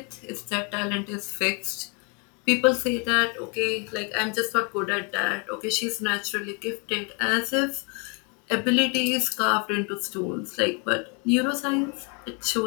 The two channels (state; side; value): quieter; right; 34.8 dB